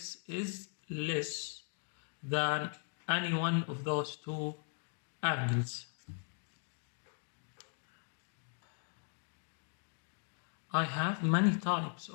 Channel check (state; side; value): silent; right; 52 dB below the other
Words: is less than any one of those two angles. I have many types